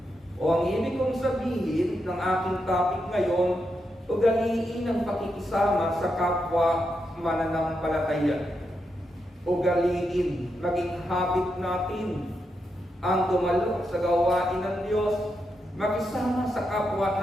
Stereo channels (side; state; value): both; normal; correlation 0.84